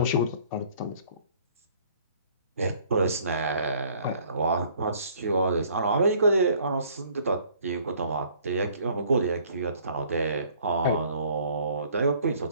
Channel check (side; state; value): both; inverted; correlation -0.57